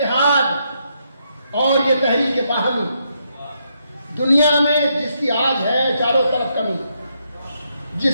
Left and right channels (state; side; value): inverted; both; correlation -0.78